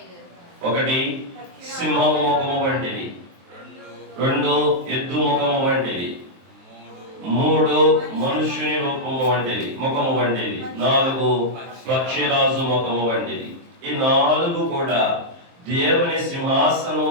ఒకటి సింహము ముఖము వంటిది, 2 ఎద్దు ముఖము వంటిది, 3 మనుష్యుని రూపము వంటిది, ముఖము వంటిది, 4 పక్షిరాజు ముఖము వంటిది. ఈ 4 కూడా దేవుని సింహాసనం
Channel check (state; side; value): late; left; 23 ms